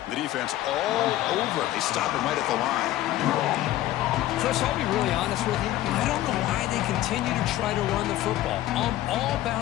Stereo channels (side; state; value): right; quieter; 14.5 dB